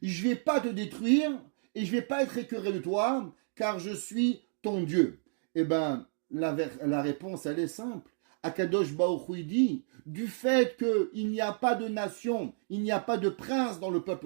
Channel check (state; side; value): silent; left; digital silence